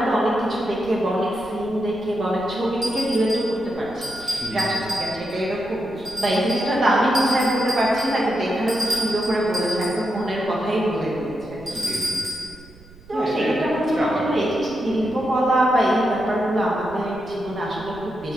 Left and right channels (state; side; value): noise; right; rumble, 22 dB below the sound